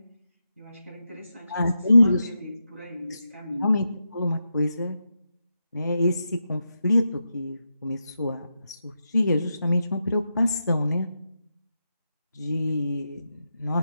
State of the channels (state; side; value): inverted; both; correlation -0.87